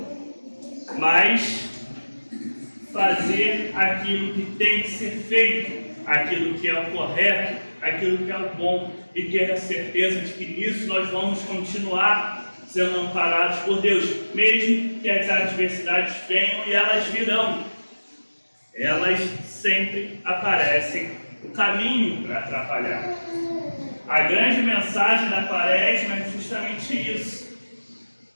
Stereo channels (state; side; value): inverted; both; correlation -1.00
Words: mas fazer aquilo que tem que ser feito, aquilo que é o correto, aquilo que é o bom, e ter a certeza de que nisso nós vamos continuar sendo amparados por Deus, mesmo que as adversidades venham, e elas virão. Elas sempre aparecem o caminho para atrapalhar. A grande mensagem da quaresma é justamente isso.